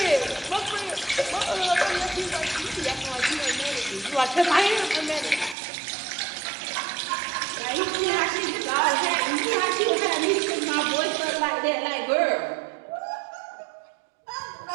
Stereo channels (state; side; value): drops out; left; at 5.6 s